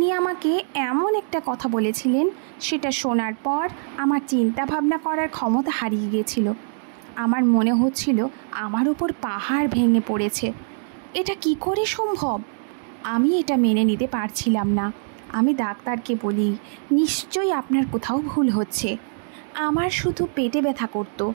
আমাকে এমন একটা কথা বলেছিলেন, সেটা শোনার পর আমার চিন্তা ভাবনা করার ক্ষমতা হারিয়ে গিয়েছিল। আমার মনে হচ্ছিল আমার উপর পাহাড় ভেঙে পড়েছে। এটা কি করে সম্ভব? আমি এটা মেনে নিতে পারছিলাম না। আমি ডাক্তারকে বলি, নিশ্চয়ই আপনার কোথাও ভুল হচ্ছে। আমার শুধু পেটে ব্যথা করতো।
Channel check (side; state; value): left; silent; digital silence